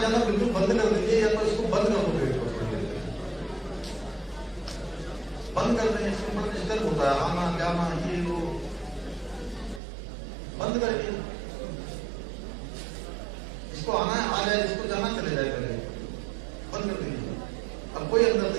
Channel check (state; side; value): drops out; left; at 9.8 s